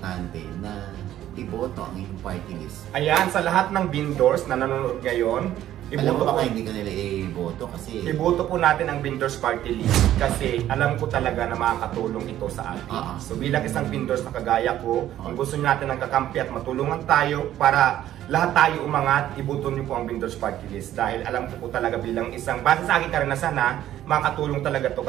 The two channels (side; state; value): left; quieter; 12.5 dB